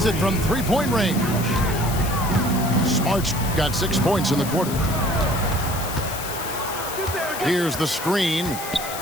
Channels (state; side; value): noise; left; hiss, 9 dB below the sound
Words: it from three-point range. Smart's got 6 points in the quarter. Here's the screen